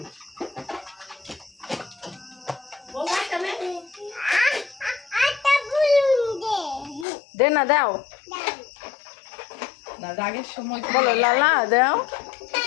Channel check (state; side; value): drops out; right; at 7.1 s